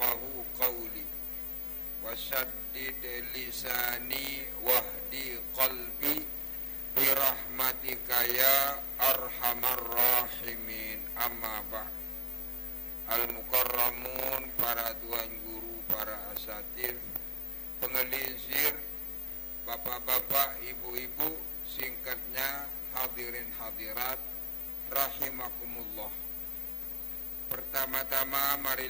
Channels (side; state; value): both; normal; correlation 0.85